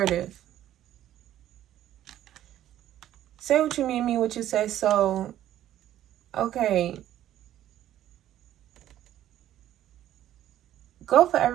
Say what you mean what you say. So, okay. Go for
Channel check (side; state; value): left; quieter; 12.4 dB